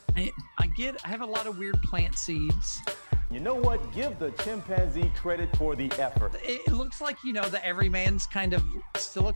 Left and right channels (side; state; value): both; inverted; correlation -1.00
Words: I have a lot of weird plant seeds. You know what? Give the chimpanzee credit for the effort. It looks like, the everyman's kind of